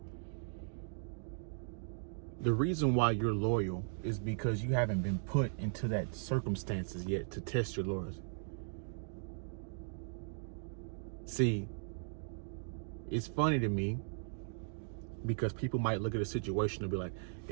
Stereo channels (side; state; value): left; silent; digital silence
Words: The reason why you're loyal is because you haven't been put into that circumstances yet to test your loyalty. See, it's funny to me Because people might look at a situation and be like,